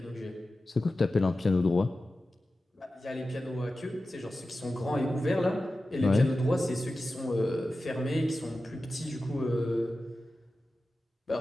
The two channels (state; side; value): normal; both; correlation 0.94